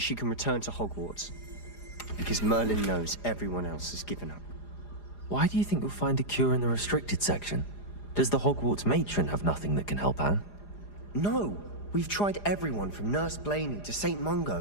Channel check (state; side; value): late; right; 4.9 ms